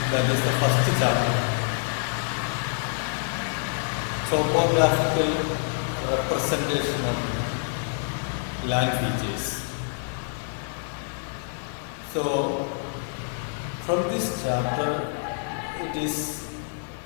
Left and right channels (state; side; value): silent; right; digital silence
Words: That is the first chapter. Topographical representation of land features. So, from this chapter, it is